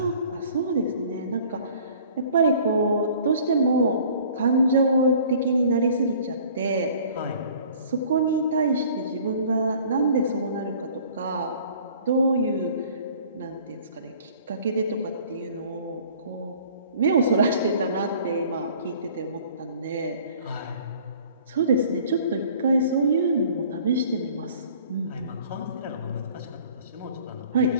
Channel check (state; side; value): inverted; both; correlation -0.51